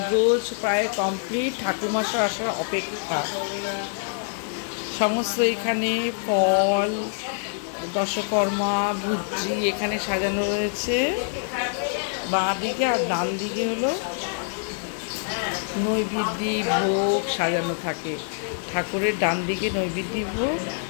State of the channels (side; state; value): right; silent; digital silence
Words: প্রায় কমপ্লিট, ঠাকুরমশাই আসার অপেক্ষা। সমস্ত এখানে ফল, দশকর্মা, ভুজি এখানে সাজানো রয়েছে বাঁ দিকে। আর ডান দিকে হলো নৈবেদ্য ভোগ সাজানো থাকে। ঠাকুরের ডান দিকে নৈবেদ্য ভোগ